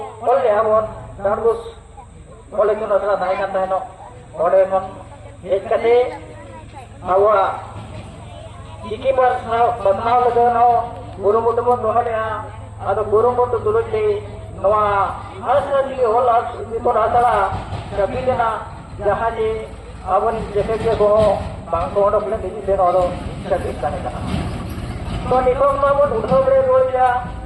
ऑल के हमन दारबुस ऑल इतुन आसड़ा थाई का तहनो ओडे मन हेज कते आवा चिकी पर बदनाव लगनो गुरुमुट बन रोहलिया आदो गुरुमुट दुलुटी नोआ हांसली ऑल इतुन आसड़ा कबिलेना जहाँ जे अबन जेके के को बांग को ओडो प्ले दिजी से ओडो सकित ताने कना तो नितों नोबन उठो बरे रोया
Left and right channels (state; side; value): identical; both; correlation 1.00